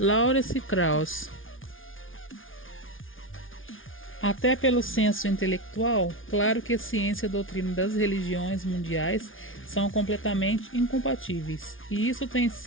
Krauss. Até pelo senso intelectual, claro que a ciência e a doutrina das religiões mundiais são completamente incompatíveis, e isso tem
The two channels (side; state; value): right; late; 0.58 ms